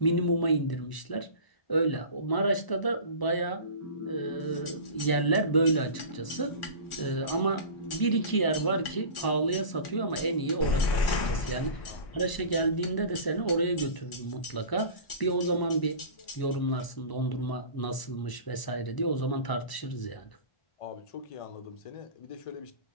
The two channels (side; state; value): right; late; 1.0 ms